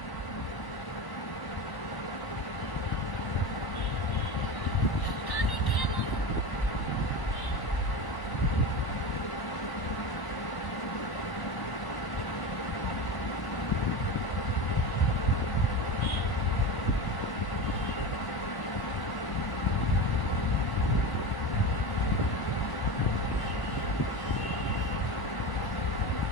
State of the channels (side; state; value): right; late; 1.1 ms